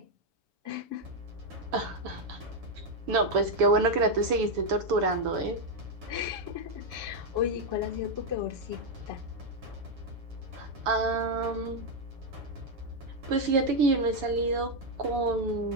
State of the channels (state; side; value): late; left; 7.1 ms